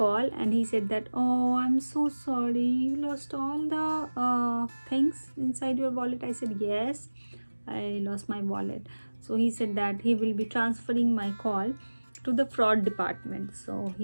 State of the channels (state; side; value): inverted; both; correlation -1.00